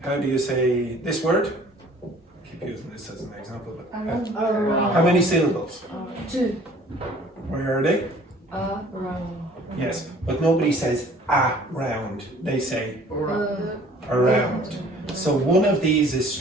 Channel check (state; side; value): normal; both; correlation 0.53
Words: do you say this word? Keep using this as an example. How many syllables? 2. Where are they? Around. Yes, but nobody says around. They say around. So one of these is